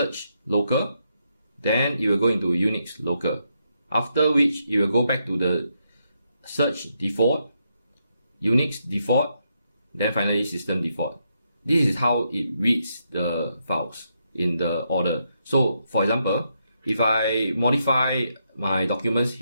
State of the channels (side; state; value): both; inverted; correlation -0.80